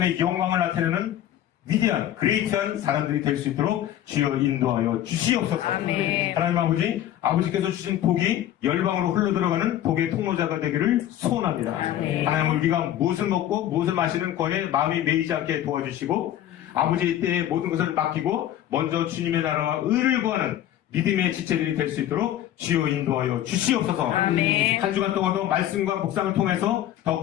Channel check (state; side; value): quieter; right; 12.1 dB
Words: 영광을 나타내는 위대한 그레이트한 사람들이 될 수 있도록 주여 인도하여 주시옵소서. 아멘. 하나님 아버지께서 주신 복이 열방으로 흘러들어가는 복의 통로자가 되기를 소원합니다. 아멘. 하나님 우리가 무엇을 먹고 무엇을 마시는 거에 마음이 매이지 않게 도와주시고 아버지의 때에 모든 것을 맡기고 먼저 주님의 나라와 의를 구하는 믿음의 지체들이 될 수 있도록 주여 인도하여 주시옵소서. 아멘. 한 주간 동안도 말씀과 묵상을 통해서